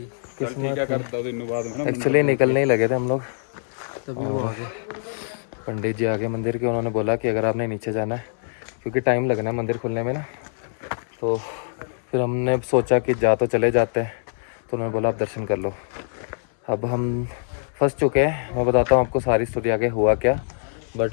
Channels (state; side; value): silent; right; 63 dB below the other